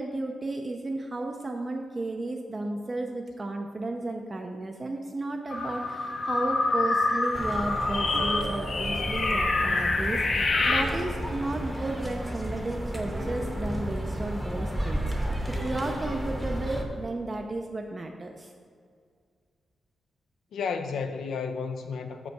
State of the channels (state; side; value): normal; both; correlation 0.89